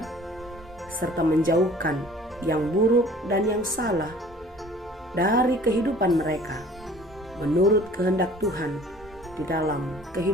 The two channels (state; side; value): normal; both; correlation 0.49